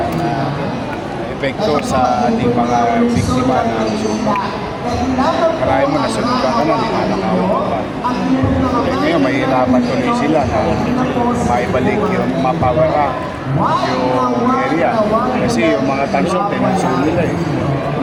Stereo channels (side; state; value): both; identical; correlation 1.00